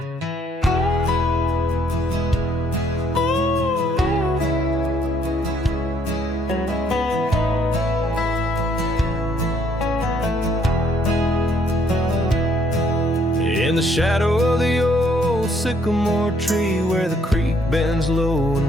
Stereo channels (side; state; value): both; normal; correlation 0.67